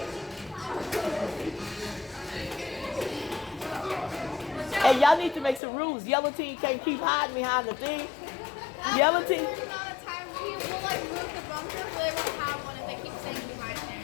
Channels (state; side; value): drops out; right; at 5.6 s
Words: Hey, y'all need to make some rules. Yellow team can't keep hiding behind the thing. Yellow team. There's not a time we will like move the bunker, but they won't have one if they keep staying behind